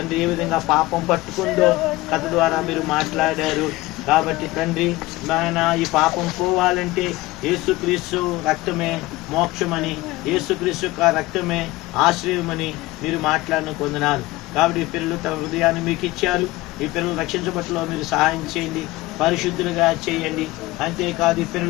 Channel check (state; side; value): quieter; right; 19.4 dB